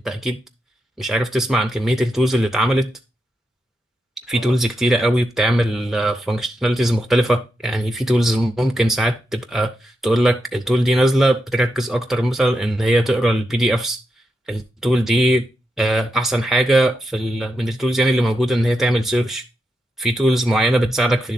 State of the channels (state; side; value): normal; both; correlation 0.86